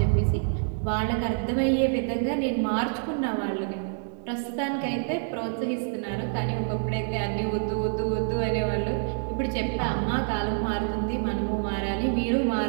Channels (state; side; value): silent; left; 60 dB below the other